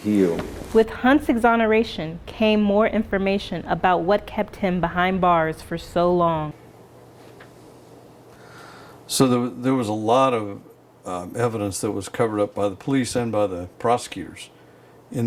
heal. With Hunt's exoneration came more information about what kept him behind bars for so long. So there was a lot of evidence that was covered up by the police and by the prosecutors.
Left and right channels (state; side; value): identical; both; correlation 1.00